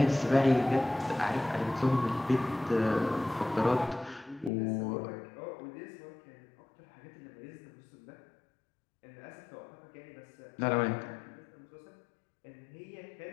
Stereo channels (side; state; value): right; drops out; at 4.5 s